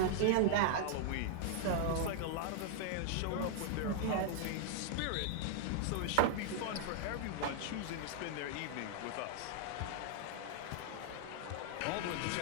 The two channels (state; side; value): different; both; correlation -0.01